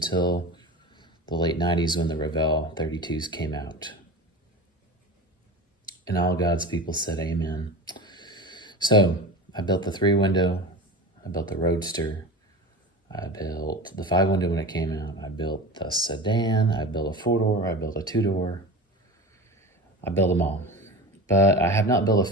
the late 90s when the Revell 32s came out. And all God's people said amen. So I built the 3-window, I built the Roadster, I built the 5-window when it came out, I built the sedan, I built a 4-door, I built a 2-door, I built them all. But I have not built a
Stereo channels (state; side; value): normal; both; correlation 0.30